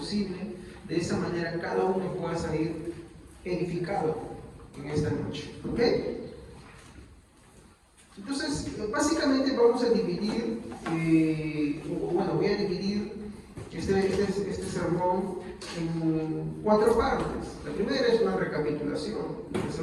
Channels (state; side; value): identical; both; correlation 1.00